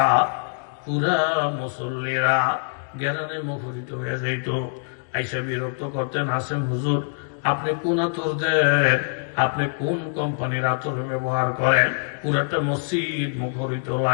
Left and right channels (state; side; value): silent; right; digital silence